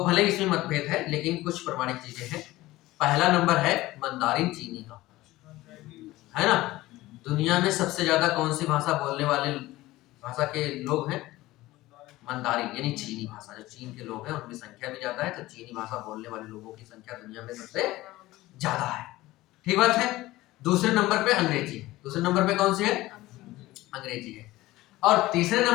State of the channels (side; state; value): right; quieter; 17.7 dB